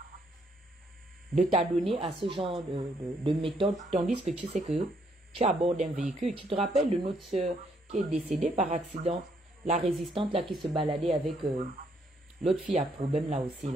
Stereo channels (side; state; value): both; normal; correlation 0.71